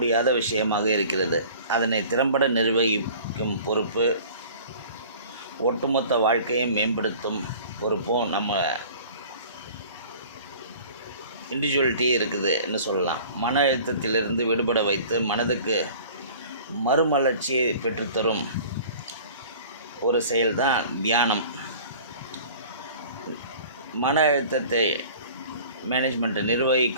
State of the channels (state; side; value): inverted; both; correlation -0.46